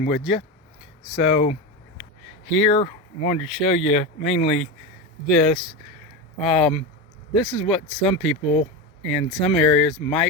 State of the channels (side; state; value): both; normal; correlation 0.18